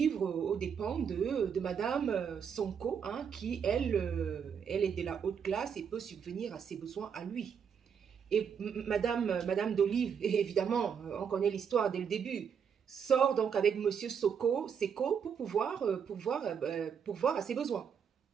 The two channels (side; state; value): left; quieter; 7.2 dB